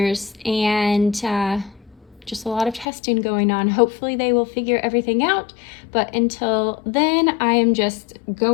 and just a lot of testing going on. Hopefully they will figure everything out, but until then, I am just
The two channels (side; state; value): right; drops out; at 2.9 s